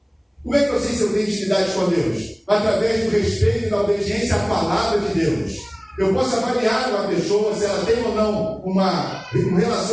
Como é que eu sei se eu tenho intimidade com Deus? Através do respeito e da obediência à palavra de Deus. Eu posso avaliar uma pessoa, se ela tem ou não um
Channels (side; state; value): both; identical; correlation 1.00